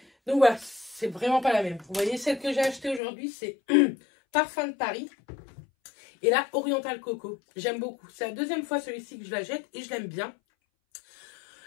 Donc voilà, c'est vraiment pas la même. Vous voyez, celle que j'ai achetée aujourd'hui, c'est Parfum de Paris. Et là, Oriental Coco. J'aime beaucoup. C'est la 2e fois celui-ci que je la jette et je l'aime bien.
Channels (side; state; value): right; drops out; at 3.0 s